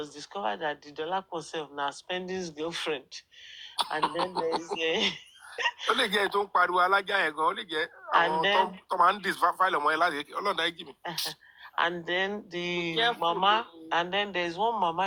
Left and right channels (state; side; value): identical; both; correlation 1.00